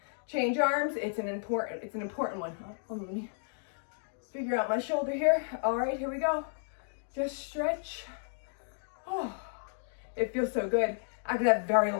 Change arms, it's an important one. Let me figure out my shoulder here. All right, here we go. Just stretch. Oh, it feels so good after that very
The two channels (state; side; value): silent; right; digital silence